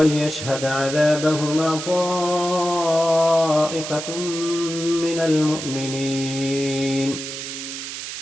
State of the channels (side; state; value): right; noise; hiss, 8 dB below the sound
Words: عذابهما طائفة من المؤمنين.